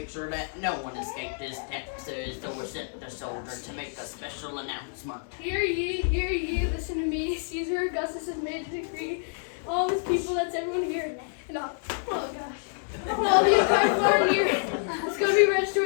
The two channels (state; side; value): silent; right; 59 dB below the other